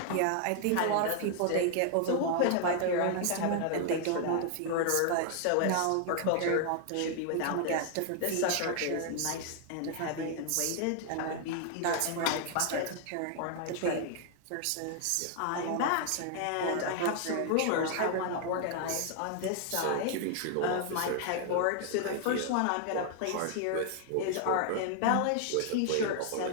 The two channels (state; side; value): different; both; correlation 0.00